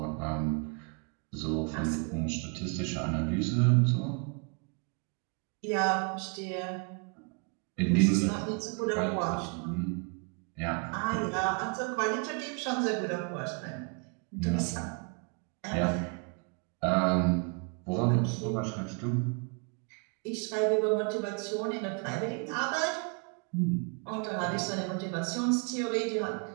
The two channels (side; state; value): left; quieter; 35.7 dB